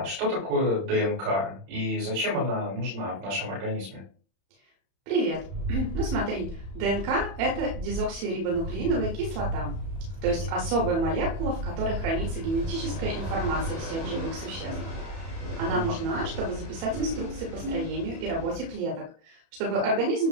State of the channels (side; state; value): left; late; 30 ms